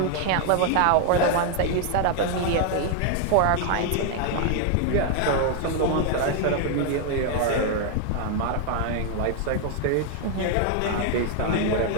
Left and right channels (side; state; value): both; different; correlation 0.00